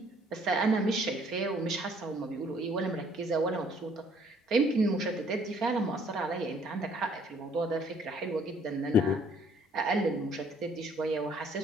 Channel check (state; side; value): normal; both; correlation 0.61